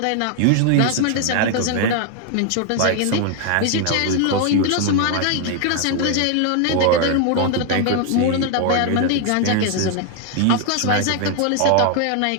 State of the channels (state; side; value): different; both; correlation 0.00